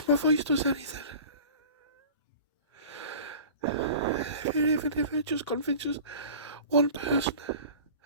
my voice does anything, even if it just convinces one person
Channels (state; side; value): inverted; both; correlation -0.41